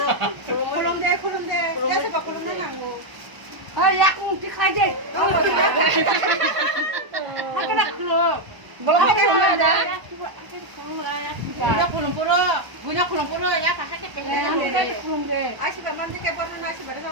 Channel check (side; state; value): left; late; 1.0 ms